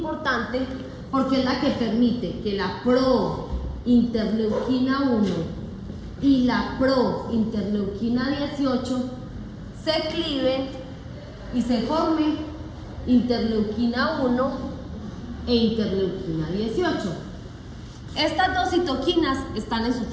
porque es la que permite que la prointerleuquina 1 y la prointerleuquina 18 se cliven y se forme interleuquina 1 e interleuquina 18. Estas dos citoquinas están en su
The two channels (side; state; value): both; identical; correlation 1.00